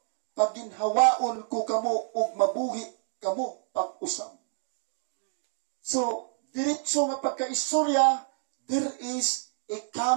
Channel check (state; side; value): silent; left; 59 dB below the other